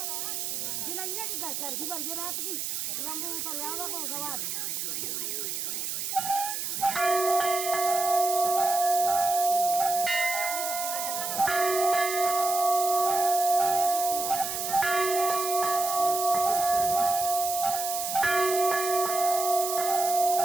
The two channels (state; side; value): noise; right; hiss, 3 dB below the sound